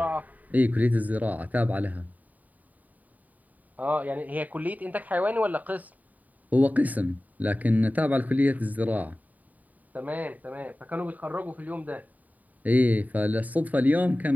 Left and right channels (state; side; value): late; left; 0.076 ms